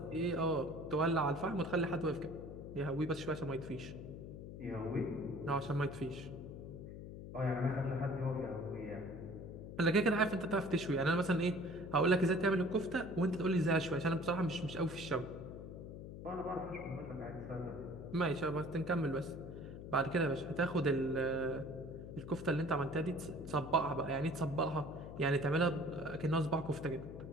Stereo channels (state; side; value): noise; left; hum, 11 dB below the sound